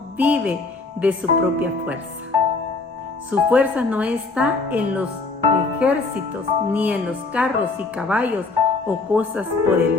vive de su propia fuerza. Su fuerza no está en los ejércitos, ni en los carros y caballos o cosas por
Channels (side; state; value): right; quieter; 3.8 dB